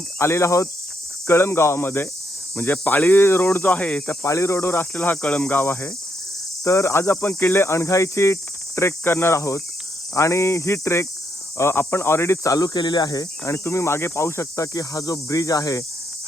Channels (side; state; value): both; normal; correlation 0.77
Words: आलेलो आहोत कळंब गावामध्ये, म्हणजे पाळी रोड जो आहे त्या पाळी रोडवर असलेला हा कळंब गाव आहे. तर आज आपण किल्ले अणघाईची ट्रेक करणार आहोत आणि ही ट्रेक आपण ऑलरेडी चालू केलेली आहे. आणि तुम्ही मागे पाहू शकता की हा जो ब्रिज आहे,